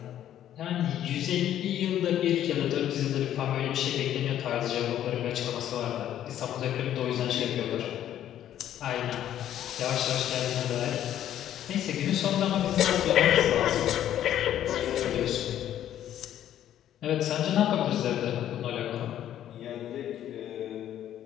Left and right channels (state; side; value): quieter; right; 11.3 dB